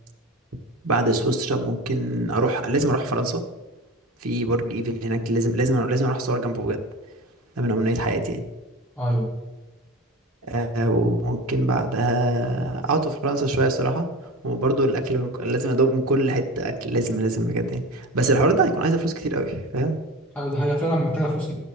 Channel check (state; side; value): normal; both; correlation 0.33